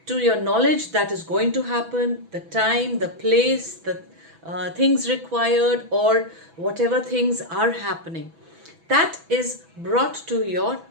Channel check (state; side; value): late; left; 6.1 ms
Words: to your knowledge that is going to happen, the time, the place, the things required, or whatever things are happening. That is brought to your